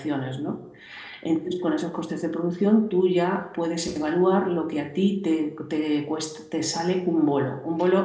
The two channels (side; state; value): both; identical; correlation 1.00